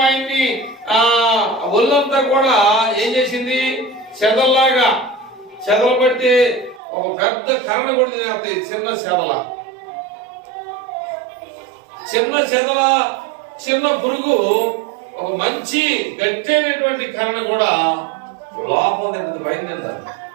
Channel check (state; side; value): drops out; left; at 6.8 s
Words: ఆయన్ని ఒళ్ళంతా కూడా ఏం చేసింది, చెదల్లాగా చెదలు పడితే ఒక పెద్ద కర్రను కూడా తినేస్తాయి. చిన్న చిన్న పురుగు ఒక మంచి గట్టైనటువంటి కర్రను కూడా లోపం తింటుంది, పైన తింటారు.